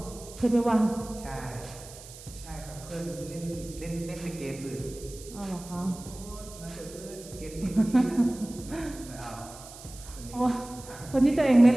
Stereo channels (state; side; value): noise; right; hiss, 17 dB below the sound